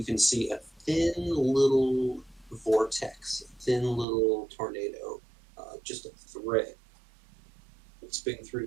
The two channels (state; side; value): drops out; left; at 4.0 s